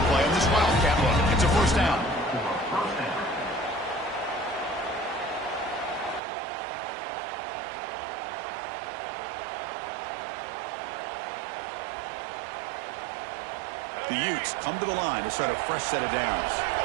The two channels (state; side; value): drops out; left; at 6.2 s